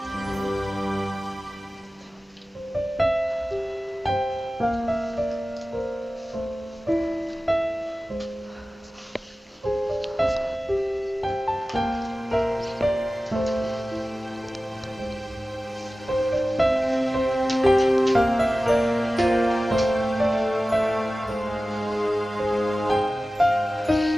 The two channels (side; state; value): both; normal; correlation 0.96